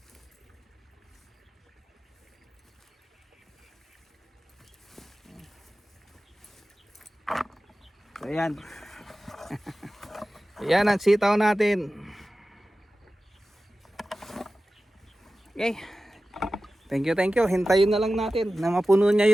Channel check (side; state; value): both; normal; correlation 0.95